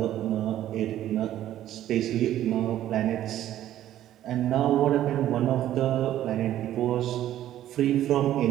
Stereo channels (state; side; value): quieter; left; 12.5 dB